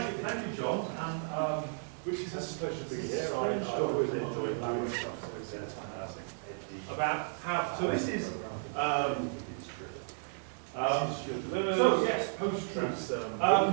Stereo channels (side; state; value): left; silent; digital silence